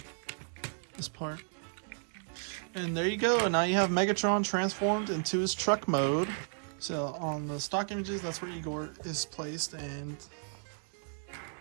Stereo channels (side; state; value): left; silent; 55 dB below the other